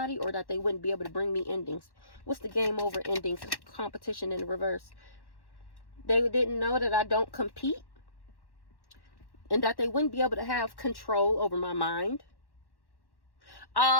or that they wouldn't be able to bring me endings. What's the game over endings? Competition in the reverse. They didn't know that I don't compete, and that they wouldn't be able to have control over my mind.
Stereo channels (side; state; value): right; late; 1.1 ms